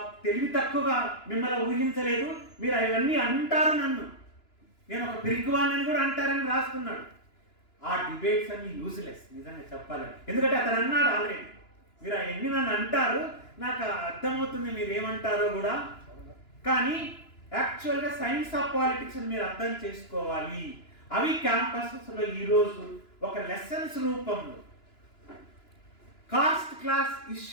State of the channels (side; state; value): right; late; 2.9 ms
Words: తెలివి తక్కువగా మిమ్మల్ని ఊహించలేదు, మీరు అవన్నీ అంటారు, నన్ను నేను ఒక పిరికివాన్ని కూడా అంటారని రాసుకున్నాడు. ఆ డిబేట్స్ అన్ని యూజ్లెస్ నిజంగా చెప్పాలని. ఎందుకంటే అతను అన్నాడు ఆల్రెడీ, మీరు అవన్నీ నన్ను అంటారు, నాకు అర్థమవుతుంది మీరు ఏమంటారో కూడా, కానీ యాక్చువల్గా సైన్స్ ఆఫ్ పాలిటిక్స్ మీరు అర్థం చేసుకోవాలి. అవి క్యాంపసెస్లో ఈరోజు ఒక లెసన్స్ రూపంలో కాస్ట్ క్లాస్